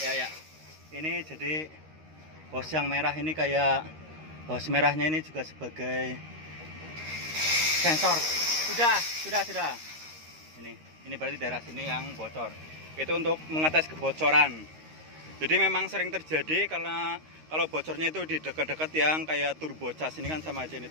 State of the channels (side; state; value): left; late; 13 ms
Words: Ya. Ini jadi hose yang merah ini kayak hose merahnya ini juga sebagai sensor. Sudah. Ini. Ini berarti daerah sini yang bocor. Itu untuk mengetes kebocoran. Jadi memang sering terjadi karena kalau bocornya itu di dekat-dekat yang kayak turbocas. Ini kan sama aja, ini